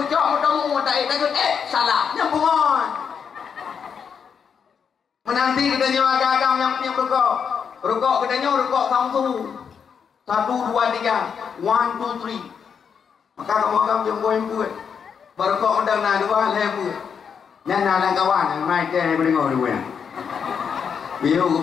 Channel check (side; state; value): right; quieter; 6.8 dB